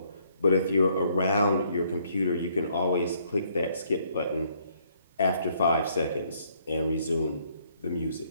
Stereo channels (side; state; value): both; inverted; correlation -0.68